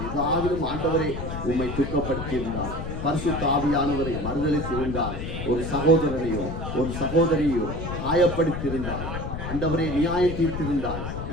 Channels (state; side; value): noise; left; rumble, 6 dB below the sound